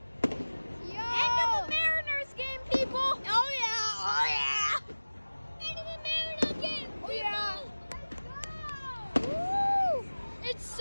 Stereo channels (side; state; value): both; inverted; correlation -1.00